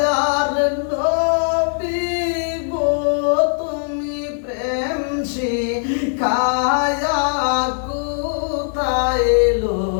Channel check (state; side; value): silent; right; 61 dB below the other